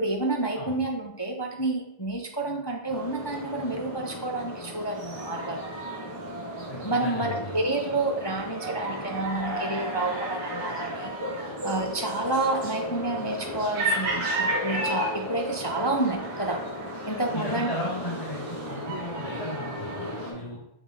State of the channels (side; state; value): right; late; 1.2 ms